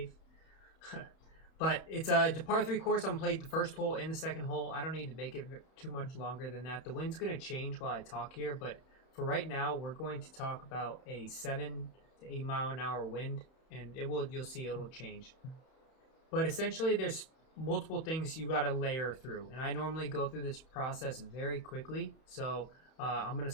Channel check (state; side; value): late; right; 31 ms